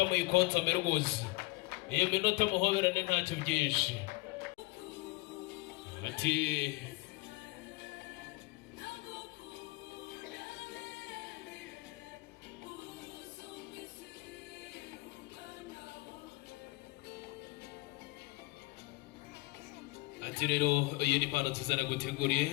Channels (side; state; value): right; quieter; 23.0 dB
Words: muyikonsome rwose, iyo minota muhoberane ntacyo byinshi. Ati rero iyi ni impano nziza